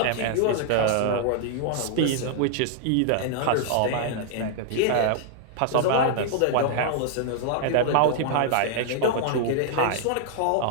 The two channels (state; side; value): different; both; correlation -0.01